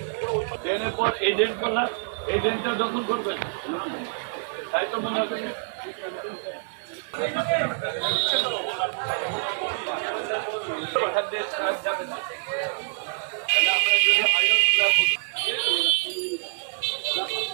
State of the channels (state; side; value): silent; left; 61 dB below the other